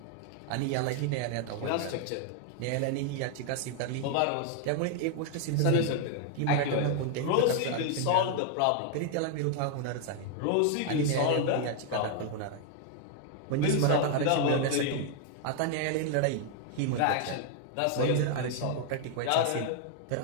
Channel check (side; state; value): both; different; correlation 0.00